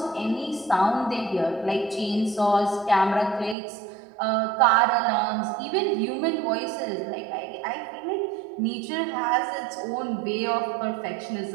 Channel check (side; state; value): left; drops out; at 3.6 s